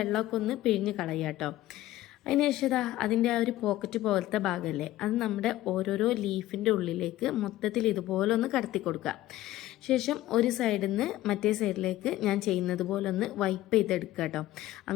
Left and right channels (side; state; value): right; quieter; 15.4 dB